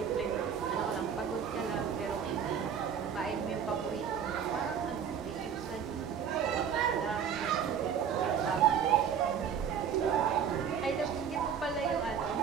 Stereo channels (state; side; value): quieter; left; 7.7 dB